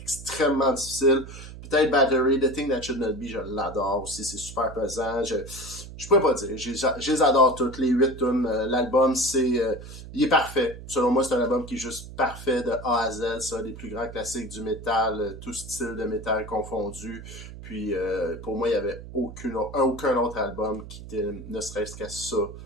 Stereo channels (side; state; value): right; noise; hum, 13 dB below the sound